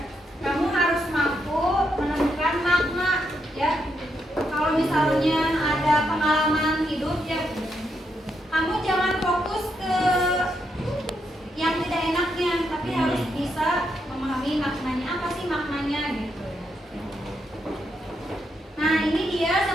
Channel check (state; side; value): normal; both; correlation 0.80